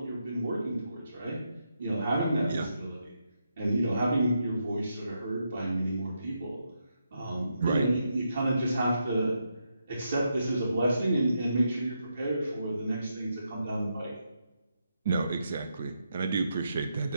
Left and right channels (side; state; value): both; inverted; correlation -0.82